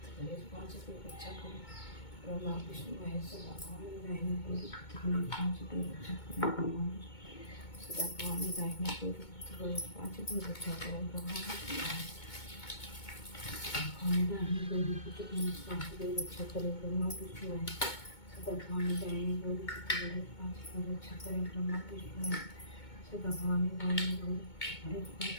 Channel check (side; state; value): right; late; 2.2 ms